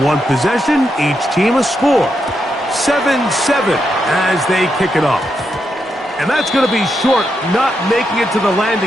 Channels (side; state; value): both; normal; correlation 0.83